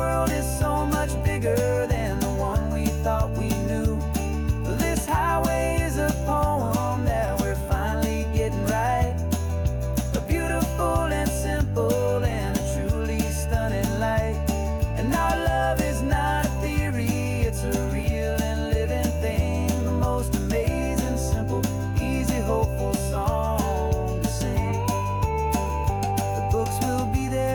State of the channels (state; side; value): identical; both; correlation 1.00